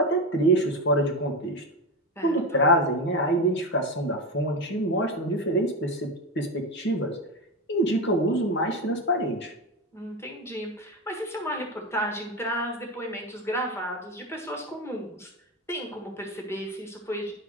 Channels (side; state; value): both; normal; correlation 0.17